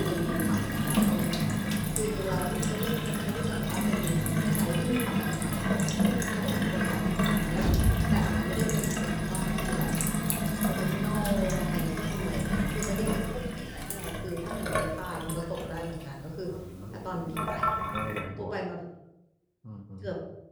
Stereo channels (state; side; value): identical; both; correlation 1.00